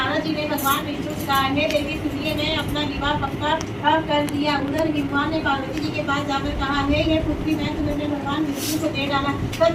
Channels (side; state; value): both; identical; correlation 1.00